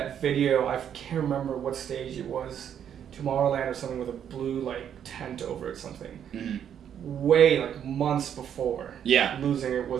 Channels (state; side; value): quieter; left; 9.1 dB